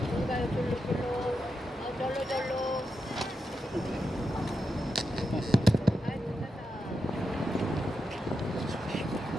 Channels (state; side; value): normal; both; correlation 0.86